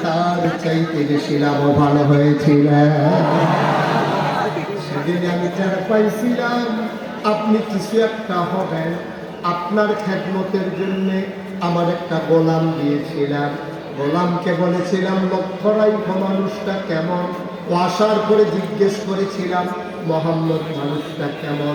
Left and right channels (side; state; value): both; identical; correlation 1.00